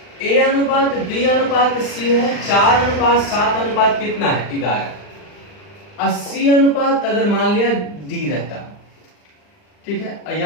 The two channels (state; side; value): late; right; 39 ms